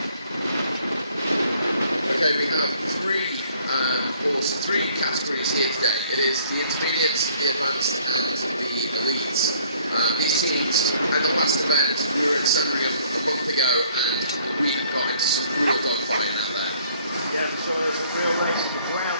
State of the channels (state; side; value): inverted; both; correlation -0.60